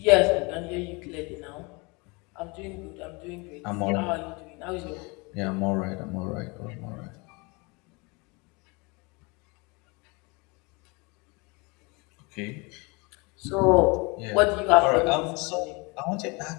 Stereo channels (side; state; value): right; quieter; 28.0 dB